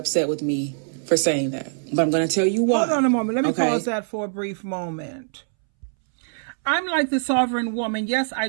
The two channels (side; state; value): left; silent; 63 dB below the other